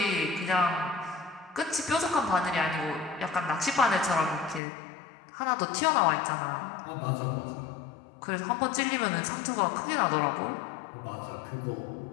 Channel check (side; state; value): right; drops out; at 4.6 s